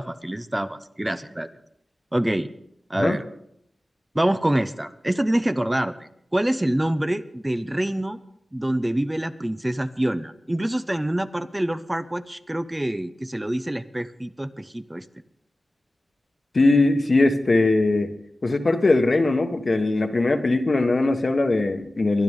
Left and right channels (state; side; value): normal; both; correlation 0.96